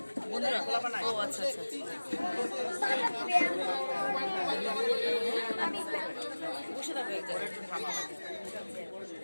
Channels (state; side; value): inverted; both; correlation -1.00